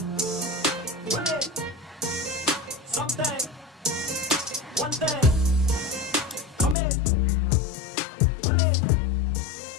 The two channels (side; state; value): right; drops out; at 6.8 s